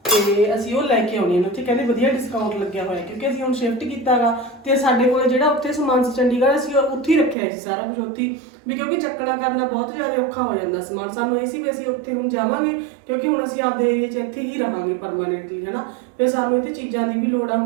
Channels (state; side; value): drops out; left; at 7.4 s